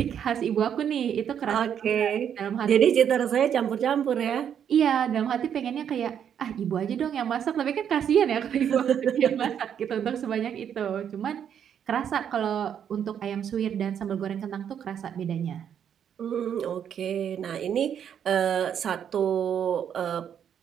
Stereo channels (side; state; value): left; quieter; 8.7 dB